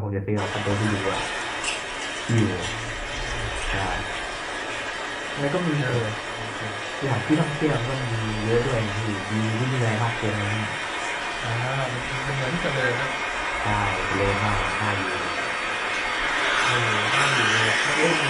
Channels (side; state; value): both; identical; correlation 1.00